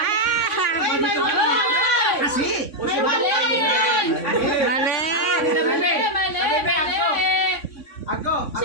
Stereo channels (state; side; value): late; right; 3.6 ms